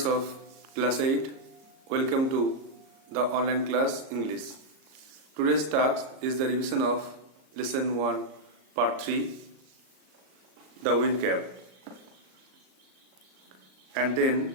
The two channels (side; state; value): left; late; 38 ms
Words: of class 8, welcome to the online class English. Today's task is the revision of lesson 1 part 3, the wind cap, and then